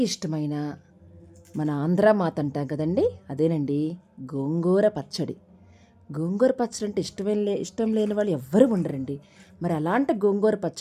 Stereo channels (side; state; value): both; identical; correlation 1.00